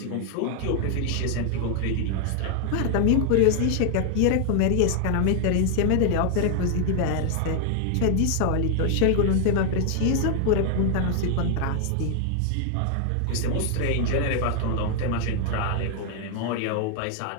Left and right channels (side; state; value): both; different; correlation 0.00